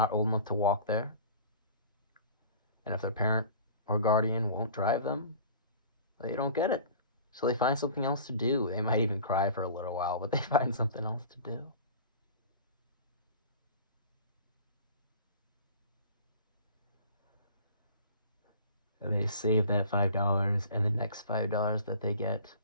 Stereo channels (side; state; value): both; inverted; correlation -0.43